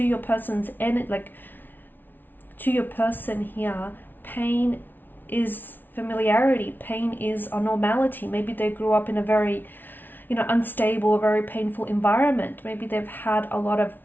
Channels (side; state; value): right; late; 0.091 ms